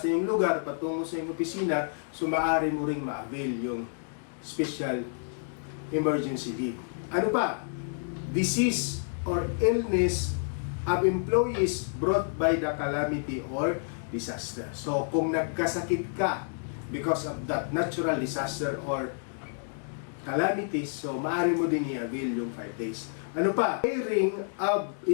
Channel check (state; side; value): silent; right; digital silence